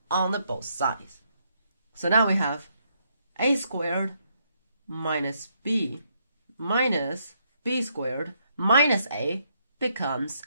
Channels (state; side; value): inverted; both; correlation -0.74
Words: on the both sides. So now we have a squared minus b squared minus a becomes